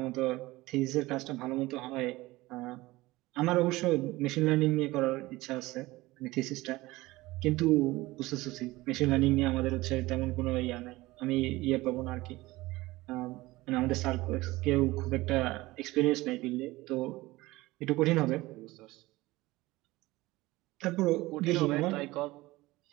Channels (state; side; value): quieter; left; 19.5 dB